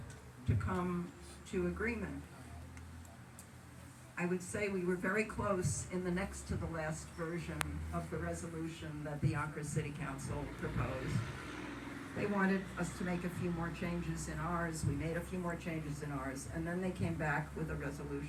to come to agreement. I would say we were very close in the next to the last version of the resolution that the Yonkers City Council proposed. They wanted us to make a few more changes in ours. We made a few more changes in ours, and then they came back with a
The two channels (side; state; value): both; identical; correlation 1.00